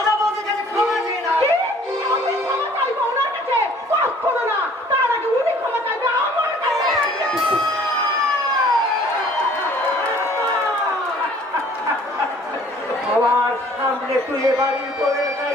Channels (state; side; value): normal; both; correlation 0.54